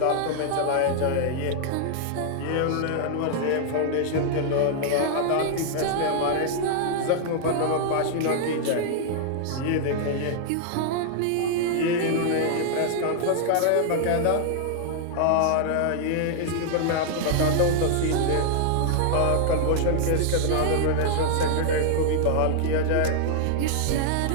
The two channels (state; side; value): different; both; correlation -0.01